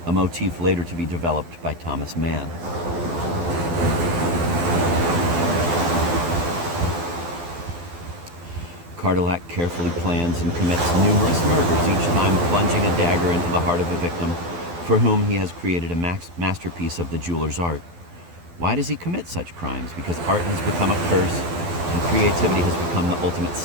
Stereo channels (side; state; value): left; late; 12 ms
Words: a motif later to be developed by Thomas Mann. Cardillac carefully plans and commits numerous murders, each time plunging a dagger into the heart of a victim for whom he has created a masterpiece of the jeweler's art. Why does he commit such crimes? Because art has become a curse and creativity has become the ultimate